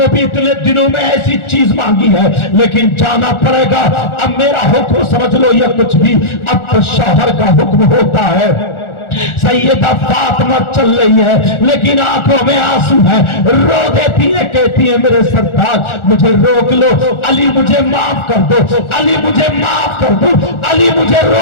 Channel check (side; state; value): right; late; 1.4 ms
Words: بھی اتنے دنوں میں ایسی چیز مانگی ہے, لیکن جانا پڑے گا. اب میرا حکم سمجھ لو یا کچھ بھی, اب تو شوہر کا حکم ہوتا ہے. سیدہ فاطمہ چل رہی ہے لیکن آنکھوں میں آنسو ہے, رو دیتی ہے, کہتی ہے میرے سرتاج مجھے روک لو, علی مجھے معاف کر دو, علی مجھے معاف کر دو, علی مجھے